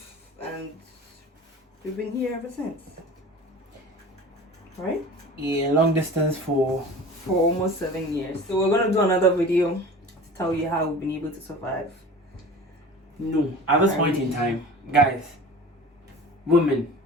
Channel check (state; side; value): normal; both; correlation 0.39